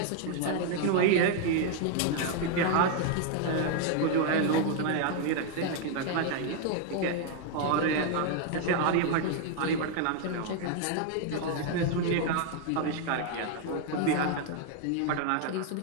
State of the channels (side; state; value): both; different; correlation 0.00